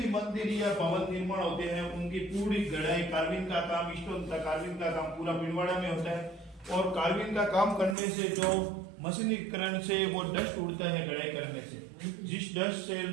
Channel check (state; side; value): drops out; left; at 8.0 s